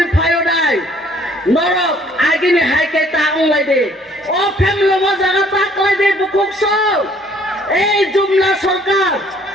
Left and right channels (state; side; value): normal; both; correlation 0.60